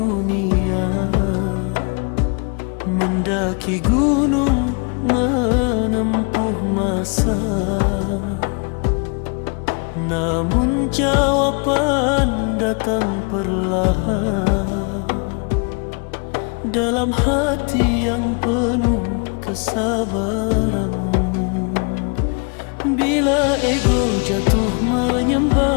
mendaki gunung, menempuh masa. Namun jawaban datang perlahan dalam hati yang penuh kesabaran. Bila ego jatuh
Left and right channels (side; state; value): right; quieter; 35.7 dB